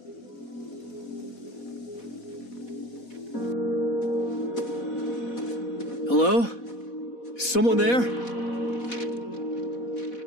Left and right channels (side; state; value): right; late; 4.1 ms